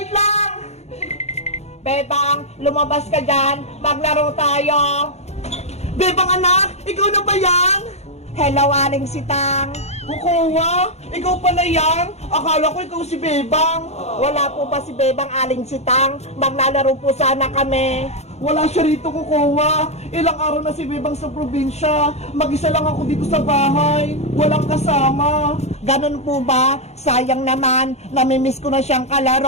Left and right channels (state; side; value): late; right; 0.31 ms